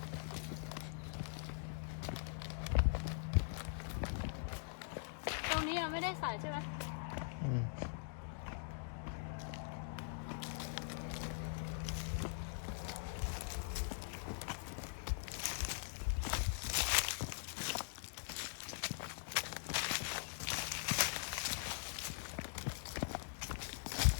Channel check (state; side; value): silent; right; digital silence